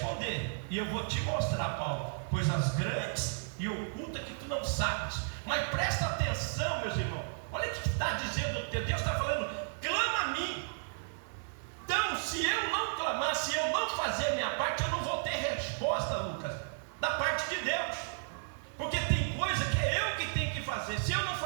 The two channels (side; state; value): left; silent; 55 dB below the other